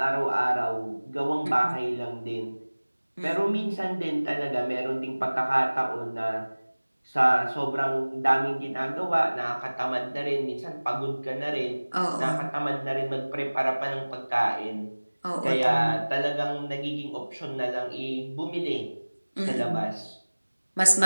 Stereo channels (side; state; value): both; inverted; correlation -1.00